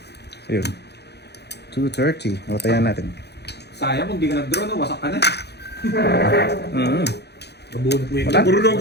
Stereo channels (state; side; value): late; right; 0.48 ms